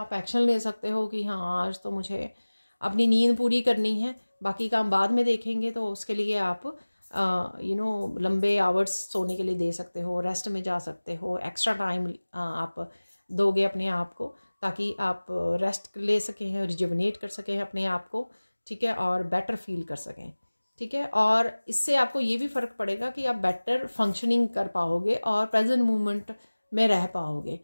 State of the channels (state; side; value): inverted; both; correlation -1.00